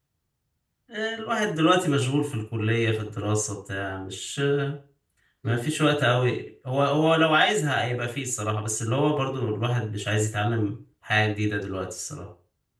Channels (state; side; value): identical; both; correlation 1.00